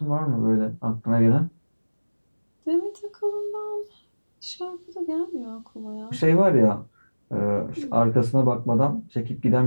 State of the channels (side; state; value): both; inverted; correlation -1.00